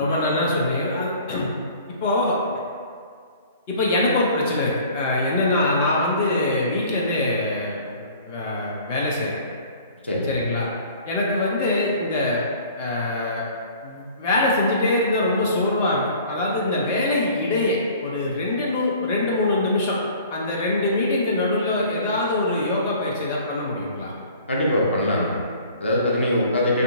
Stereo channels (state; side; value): inverted; both; correlation -0.49